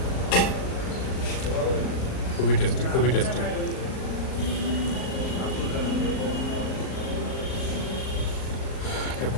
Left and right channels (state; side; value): late; right; 38 ms